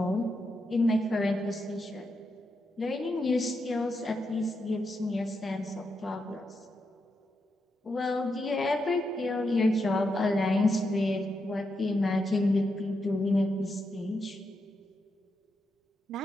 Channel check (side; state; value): both; normal; correlation 0.84